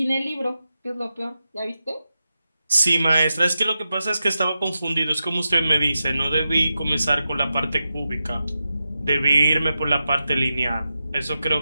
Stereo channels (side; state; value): both; inverted; correlation -0.90